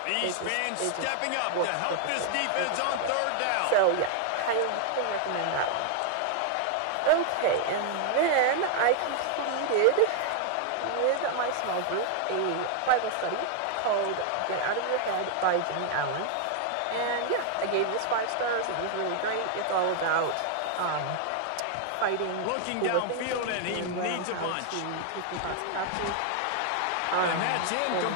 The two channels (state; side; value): different; both; correlation 0.00